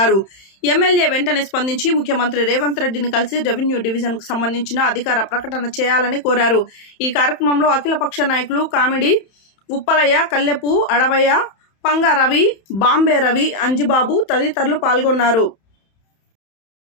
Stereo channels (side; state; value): right; late; 31 ms